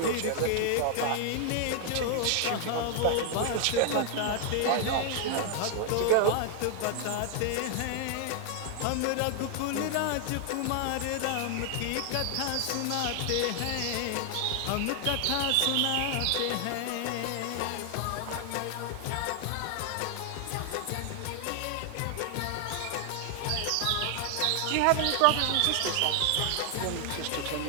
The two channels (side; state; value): both; different; correlation 0.00